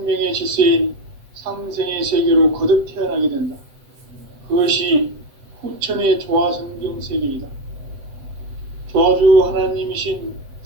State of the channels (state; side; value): late; left; 7.8 ms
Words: 질서인 상생의 세계로 거듭 태어나게 된다. 그것이 후천의 조화성경 세계이다. 조화주 하나님이신